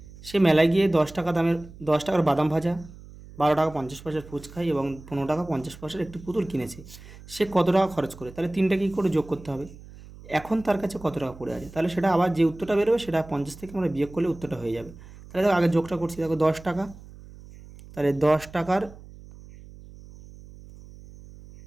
সে মেলায় গিয়ে 10 টাকা দামের 10 টাকার বাদাম ভাজা, 12 টাকা 50 পয়সার ফুচকাই এবং 15 টাকা 50 পয়সার একটি পুতুল কিনেছে। সে কত টাকা খরচ করে? তাহলে 3টা কী করে যোগ করতে হবে? এখন তার কাছে কত টাকা পড়ে আছে, তাহলে সেটা আবার যে উত্তরটা বেরোবে সেটা 50 থেকে আমরা বিয়োগ করলে উত্তরটা হয়ে যাবে। তাহলে দেখো আগে যোগটা করছি। দেখো 10 টাকা, তাহলে 10 টাকার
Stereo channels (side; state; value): right; noise; hum, 18 dB below the sound